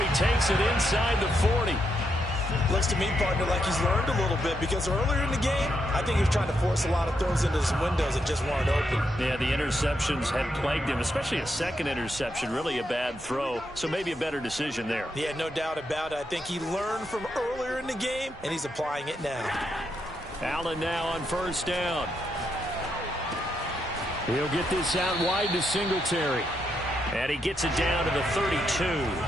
takes it inside the 40. Looks to me, partner, like he's learned a little bit because earlier in the game, I think he was trying to force a lot of throws into some windows that just weren't open. Yeah, the interceptions had plagued him, especially a second interception, really a bad throw, so maybe a better decision there. Yeah, no doubt about it. I think he learned from earlier in the game, and he's applying it now. Allen now on 1st down. He'll get this out wide to Singletary. And he gets it down to the 32.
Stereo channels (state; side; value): normal; both; correlation 0.81